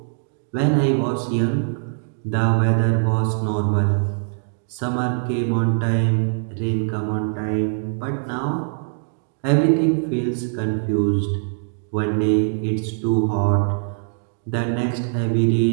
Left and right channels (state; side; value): silent; left; digital silence